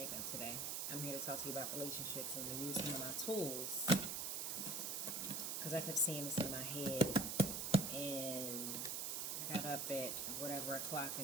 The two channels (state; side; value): noise; right; hiss, 1 dB below the sound